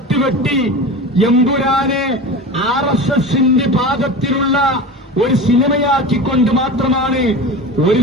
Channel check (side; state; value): both; normal; correlation 0.30